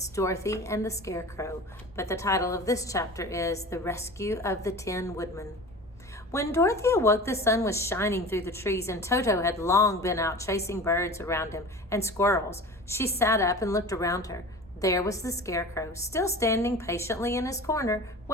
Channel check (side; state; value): both; normal; correlation 0.36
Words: Dorothy and the Scarecrow. But the title of this chapter is The Rescue of the Ten Woodmen. When Dorothy awoke, the sun was shining through the trees, and Toto had long been out chasing birds around him and squirrels. She sat up and looked around her. There was the Scarecrow, still standing patiently in his corner,